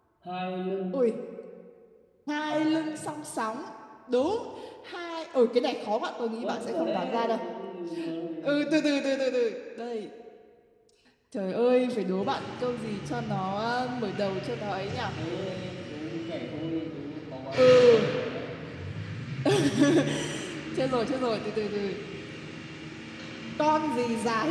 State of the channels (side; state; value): both; identical; correlation 1.00